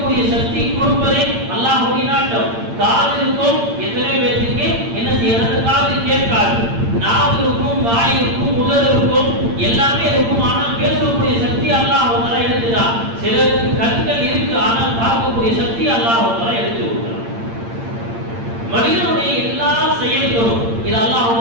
சக்தி கொடுப்பதே அல்லாஹ்வுடைய நாட்டம். காது இருக்கும், எத்தனை பேருக்கு என்ன செய்யறது, காது கேட்காது. நாவு இருக்கும், வாய் இருக்கும், உதடு இருக்கும், எல்லாமே இருக்கும். ஆனால் பேசக்கூடிய சக்தி அல்லாஹ் தஆலா எடுத்துட்டான். சிலருக்கு கண்கள் இருக்கு, ஆனால் பார்க்கக்கூடிய சக்தி அல்லாஹ் தஆலா எடுத்து விட்டான். மனிதனுடைய எல்லா செயல்களும் இது அல்லாஹ்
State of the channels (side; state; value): left; late; 8.8 ms